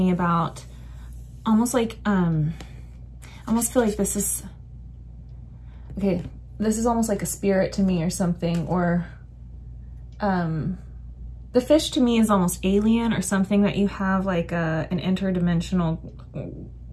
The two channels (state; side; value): identical; both; correlation 1.00